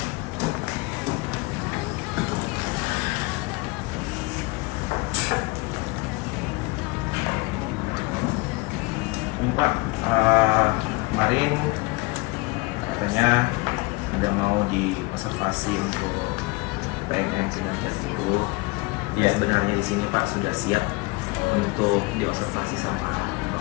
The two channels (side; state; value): right; quieter; 25.4 dB